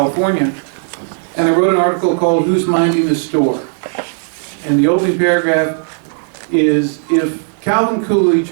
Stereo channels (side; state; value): left; silent; digital silence